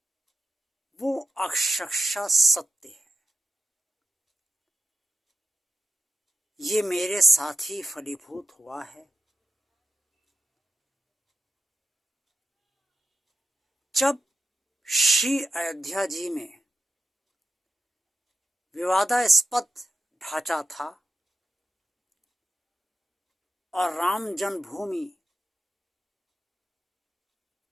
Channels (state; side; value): normal; both; correlation 0.90